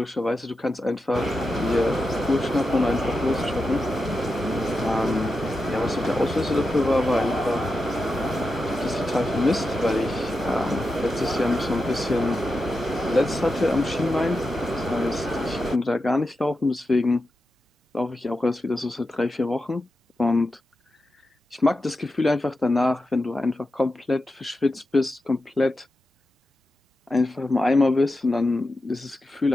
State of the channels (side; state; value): both; normal; correlation 0.89